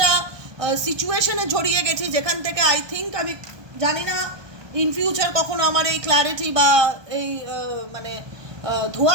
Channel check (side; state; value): left; late; 1.2 ms